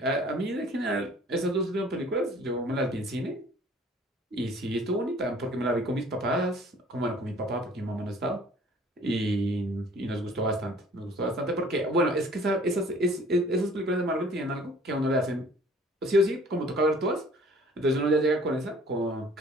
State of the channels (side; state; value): both; normal; correlation 0.53